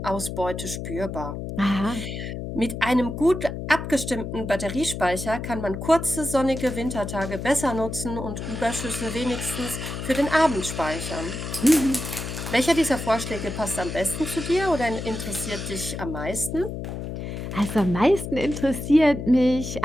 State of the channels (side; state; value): left; noise; hum, 6 dB below the sound